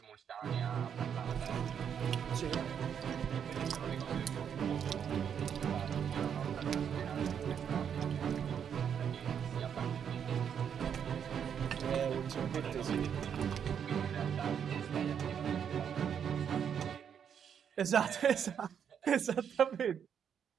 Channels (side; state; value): left; quieter; 8.0 dB